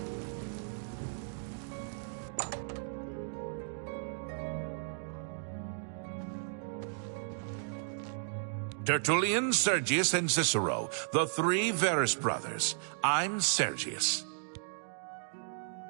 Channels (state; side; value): silent; left; digital silence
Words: Tertullian, Sergius, and Cicero, the three Verus brothers. I'm Sergius.